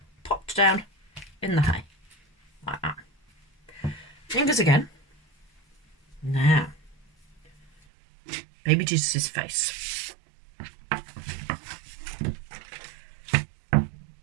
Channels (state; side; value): drops out; left; at 7.7 s